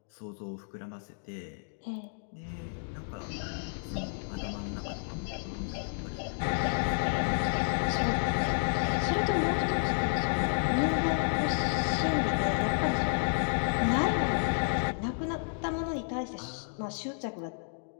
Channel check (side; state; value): right; silent; digital silence